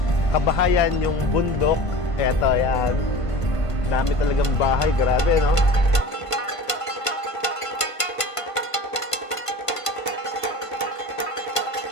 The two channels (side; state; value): right; late; 1.5 ms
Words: kabahayan, yung bundok. Eto, yan. Dami talagang bahay, grabe, no?